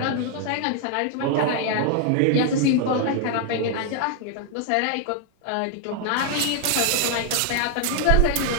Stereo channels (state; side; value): different; both; correlation 0.00